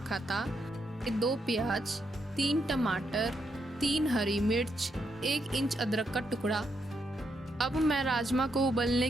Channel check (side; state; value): both; normal; correlation 0.79